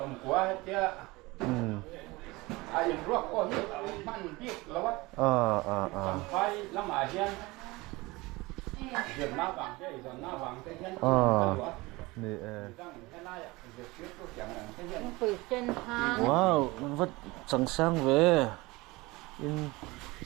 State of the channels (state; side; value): quieter; left; 22.3 dB